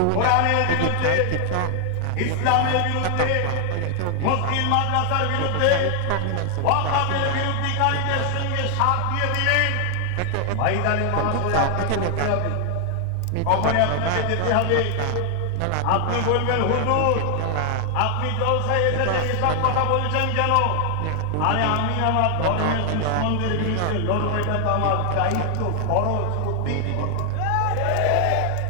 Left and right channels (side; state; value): both; different; correlation 0.00